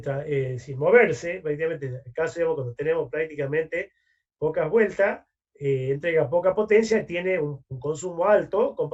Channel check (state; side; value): identical; both; correlation 1.00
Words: moverse, prácticamente, en el caso, digamos, cuando tenemos prácticamente pocas vueltas, entrega poca potencia, tiene un consumo alto